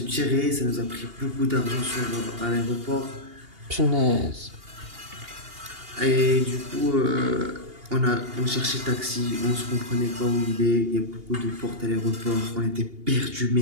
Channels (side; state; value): left; late; 2.8 ms